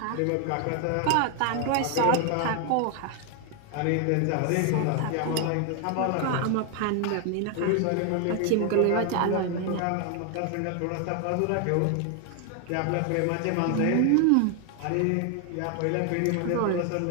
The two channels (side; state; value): both; different; correlation 0.00